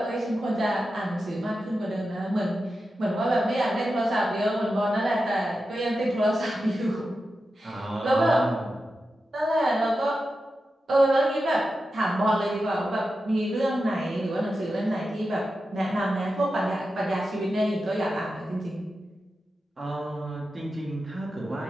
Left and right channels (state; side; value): normal; both; correlation 0.91